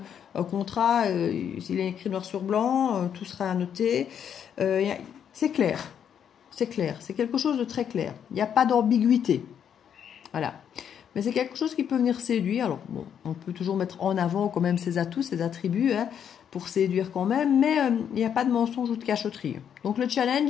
un contrat, s'il est écrit noir sur blanc, tout sera annoté. C'est clair. C'est clair, c'est quelque chose de très clair. Il n'y a pas d'ambiguïté. Voilà. Mais c'est quelque chose qui peut venir séduire. Alors, bon, on peut toujours mettre en avant quand même ses atouts, ses attributs, hein, pour séduire quand même, mais il n'y a pas de mensonge ou de cachotterie. Donc, le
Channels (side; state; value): right; quieter; 8.5 dB